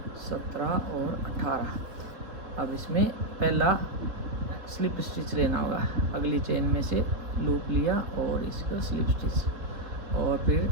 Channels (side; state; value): left; late; 3.7 ms